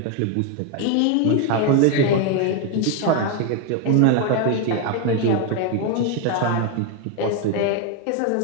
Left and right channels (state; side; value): different; both; correlation 0.01